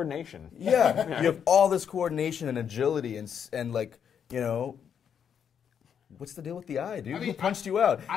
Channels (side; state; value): right; quieter; 7.9 dB